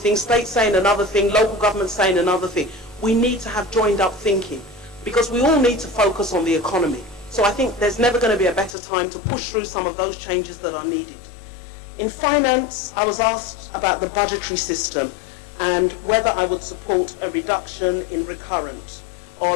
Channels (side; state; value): right; drops out; at 8.8 s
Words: state saying another thing, local government saying another thing. We need to have joined up thinking, because we all need to focus on the economy. So I think there's never going to be a better time to push through some of those changes that are needed. In finance, I was asked about the budgetary system and whether I would support a reduction in recurrent or a